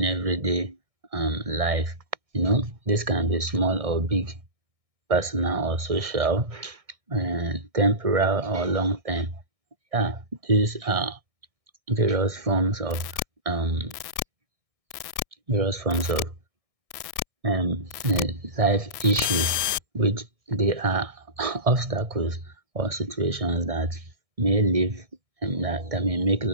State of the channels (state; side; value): late; left; 1.6 ms